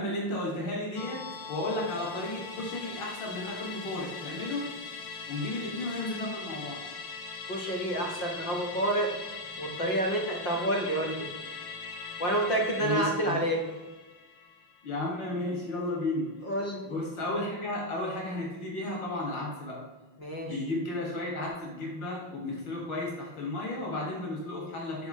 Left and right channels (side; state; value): right; late; 5.7 ms